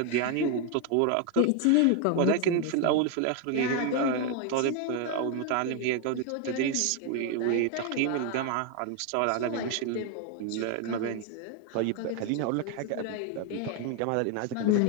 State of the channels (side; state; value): both; different; correlation 0.01